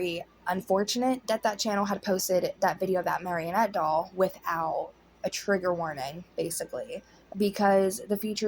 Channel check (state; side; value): identical; both; correlation 1.00